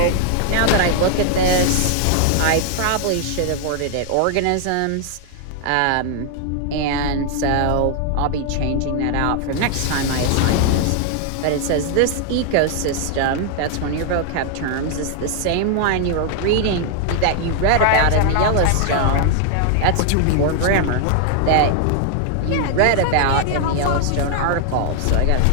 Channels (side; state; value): both; different; correlation 0.00